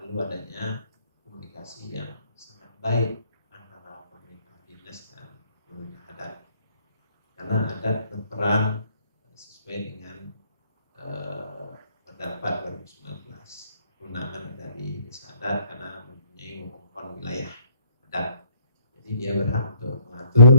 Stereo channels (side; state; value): both; inverted; correlation -0.65